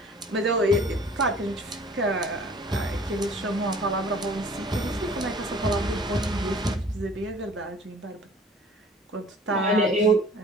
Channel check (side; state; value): both; normal; correlation 0.50